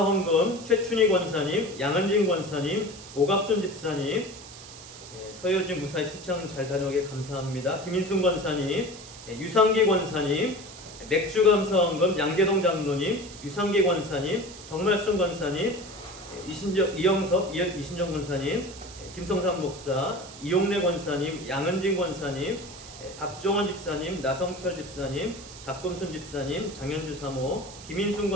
최춘희 권사님, 양은진 권사님, 오갑순 집사님, 서효진 무사히 출장 잘 다녀오게 감사합니다. 김인순 권사님, 유상기 권사님, 맥주감사헌금 양계동 장로님, 유상기 권사님, 정말순 권사님, 이영섭 이신정 권사님, 김성삼 목사, 이용래 권사님, 양은진 권사님, 박종원 집사님, 나성철 집사님, 박금순 집사님, 장현주 사모, 김인순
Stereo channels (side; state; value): right; noise; hiss, 16 dB below the sound